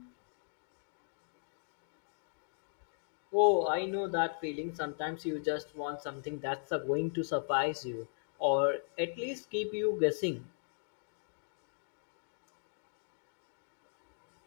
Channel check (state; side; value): silent; right; digital silence